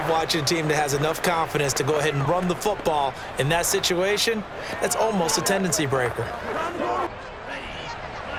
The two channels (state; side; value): identical; both; correlation 1.00